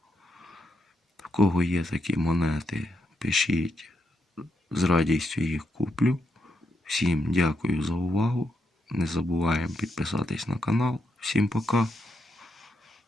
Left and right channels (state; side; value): normal; both; correlation 0.81